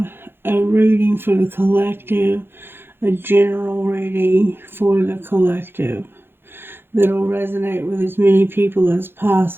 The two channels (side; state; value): left; late; 0.10 ms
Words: a reading for the collective, a general reading for the collective that'll resonate with as many people as